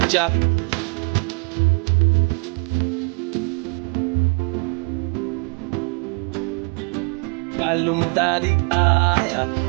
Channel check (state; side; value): quieter; left; 33.2 dB